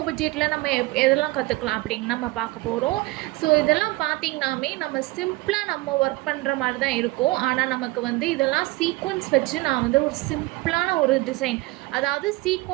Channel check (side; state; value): left; quieter; 20.7 dB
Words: பட்ஜெட்டில் நம்ம எதெல்லாம் கற்றுக்கலாம் அப்படின்னு நம்ம பார்க்க போகிறோம். ஸோ இதெல்லாம் பார்த்திங்கனாமே நம்ம சிம்பிளாக நம்ம ஒர்க் பண்ணுற மாதிரி தான் இருக்கும். ஆனால் நமக்கு இதெல்லாம் சீக்வன்ஸ் வச்சு நான் ஒரு சிம்பிளான ஒரு டிசைன், அதாவது